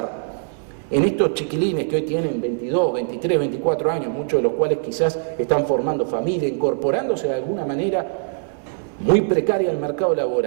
en estos chiquilines que hoy tienen 22, 23, 24 años, muchos de los cuales quizás están formando familia, incorporándose de alguna manera muy precaria al mercado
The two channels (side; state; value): left; silent; 64 dB below the other